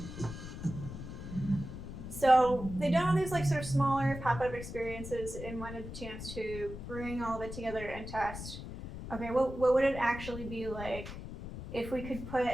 So they done all these like sort of smaller pop-up experiences and wanted the chance to bring all of it together and test. Okay, what would it actually be like if we could put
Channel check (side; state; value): left; noise; rumble, 9 dB below the sound